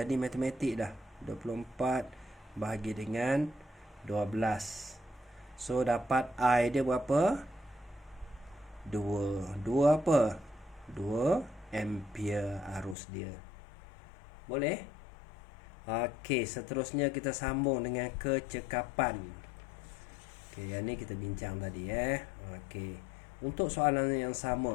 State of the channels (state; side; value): drops out; right; at 13.0 s